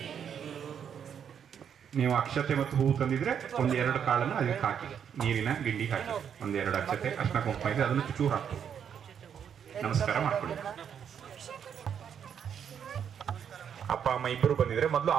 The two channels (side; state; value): left; quieter; 8.1 dB